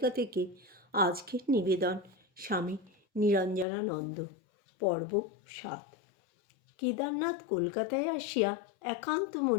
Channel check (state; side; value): drops out; right; at 3.7 s